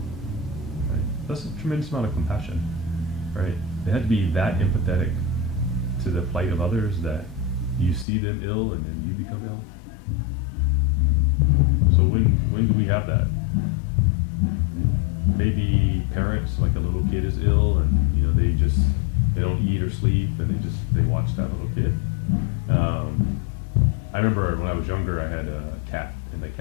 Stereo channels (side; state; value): right; drops out; at 8.1 s